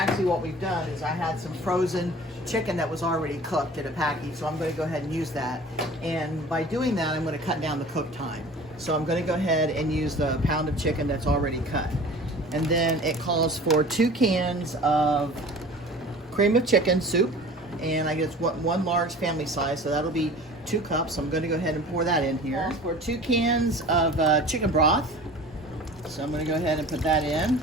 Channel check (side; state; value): both; normal; correlation 0.42